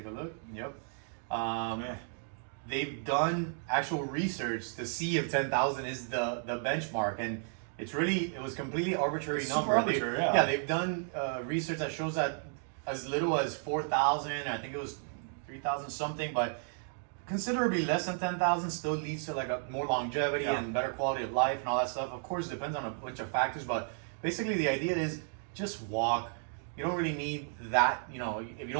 a look. Yep. They've done actual research to see if 10,000 is the benchmark, and it was completely arbitrary It's number. super arbitrary, yeah. Yeah, they've done research that shows that as little as 4,000. I think it was 3,000 something, but considerably less than 10,000 still leads to like a more longevity Yeah. and better quality of life and all that stuff. Of course, it depends on a bunch of factors, but basically the idea is just walk. You don't really need that, if you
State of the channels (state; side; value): silent; left; 56 dB below the other